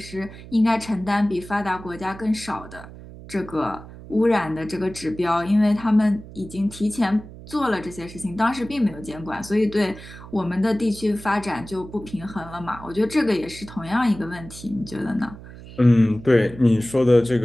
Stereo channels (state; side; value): noise; right; hum, 16 dB below the sound